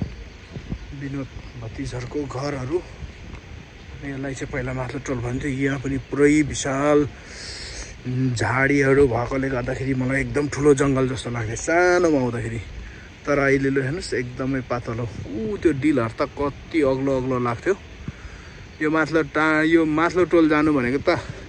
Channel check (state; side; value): identical; both; correlation 1.00